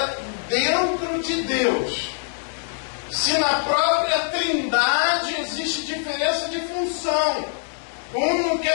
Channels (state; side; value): silent; right; digital silence